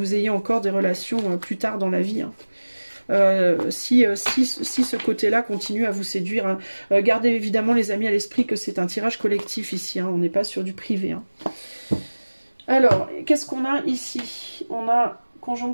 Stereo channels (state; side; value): inverted; both; correlation -1.00